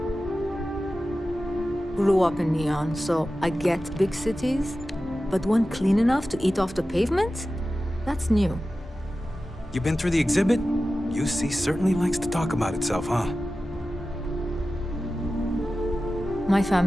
Grew up in Neon, so I get big cities, but one clean enough to eat off the pavement? That's new. You been through the exhibit? UC certainly likes to talk about itself, huh? My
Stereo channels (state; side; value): normal; both; correlation 0.94